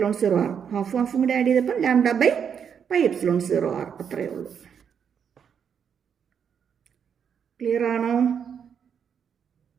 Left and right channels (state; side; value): quieter; left; 7.5 dB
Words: ഹാഫും കൂടി ആഡ് ചെയ്തപ്പോൾ λ/πε0R. അത്രയേ ഉള്ളൂ. ക്ലിയർ ആണോ?